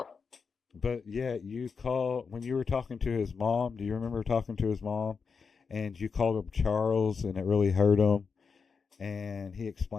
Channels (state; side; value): quieter; right; 5.5 dB